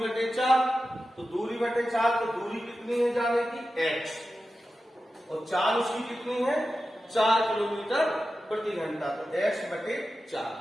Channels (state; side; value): normal; both; correlation 0.93